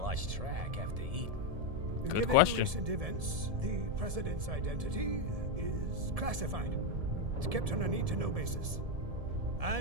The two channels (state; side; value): late; left; 1.7 ms